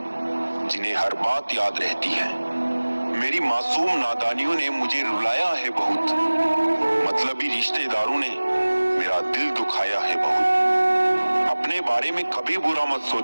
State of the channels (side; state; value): both; inverted; correlation -1.00